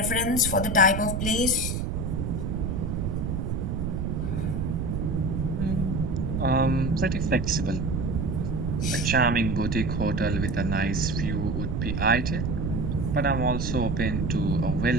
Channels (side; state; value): right; noise; rumble, 1 dB below the sound